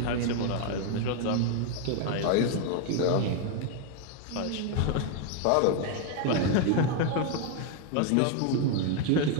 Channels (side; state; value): both; different; correlation 0.01